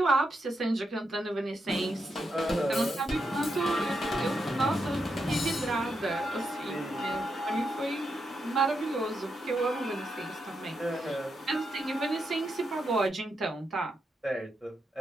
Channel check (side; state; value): both; normal; correlation 0.83